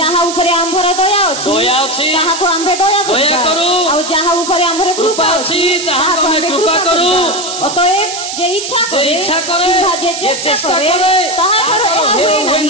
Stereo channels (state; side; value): noise; right; hiss, 7 dB below the sound